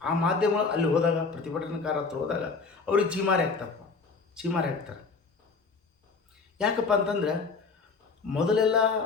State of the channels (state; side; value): quieter; right; 4.6 dB